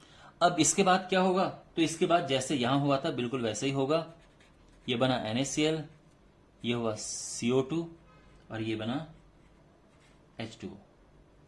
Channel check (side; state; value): both; identical; correlation 1.00